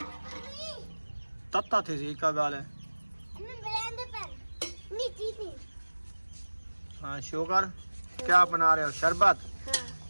तत्ता थी हिका गाले। हाँ, शुगर क्या बना रहे हो? शरबत?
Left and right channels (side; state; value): both; inverted; correlation -1.00